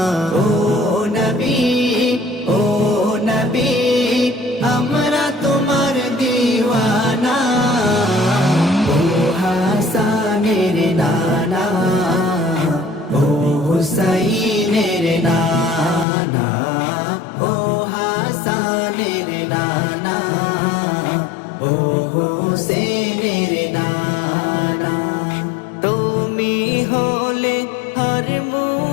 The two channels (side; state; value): right; drops out; at 16.1 s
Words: ও নবী আমরা তোমার দিওয়ানা ও হাসানের নানা ও হুসাইনের নানা ও হাসানের নানা ও হুসেনের নানা তুমি হলে হর